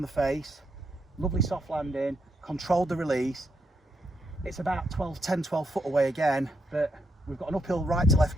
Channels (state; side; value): normal; both; correlation 0.79